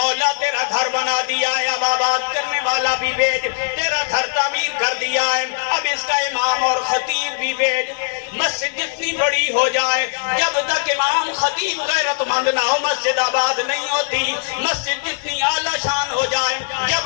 تیرا گھر بنا دیا ہے, اب آباد کرنے والا بھی بھیج. تیرا گھر تعمیر کر دیا ہے, اب اس کا امام اور خطیب بھی بھیج. مسجد جتنی بڑی ہو جائے, جب تک امام خطیب غیرت مند نہ ہو مسجد آباد نہیں ہوتی. مسجد جتنی اعلیٰ شان ہو جائے,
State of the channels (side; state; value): right; silent; digital silence